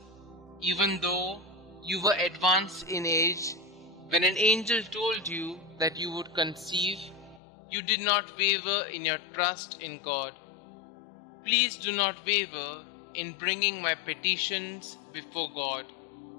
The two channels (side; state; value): right; drops out; at 7.4 s